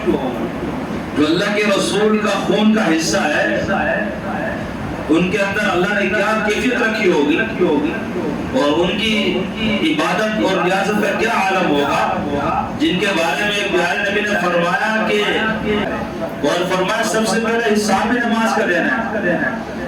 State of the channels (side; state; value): both; identical; correlation 1.00